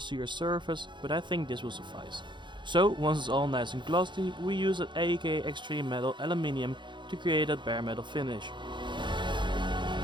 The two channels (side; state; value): left; late; 0.23 ms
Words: surface, but I think this will suffice. So once it's all nice and glossy, we use an AK Extreme Metal Aluminium to create that bare metal finish.